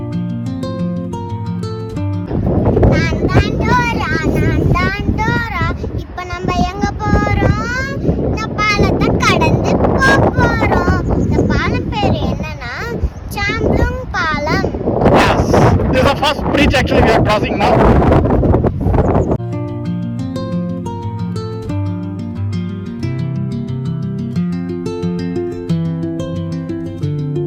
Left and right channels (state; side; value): identical; both; correlation 1.00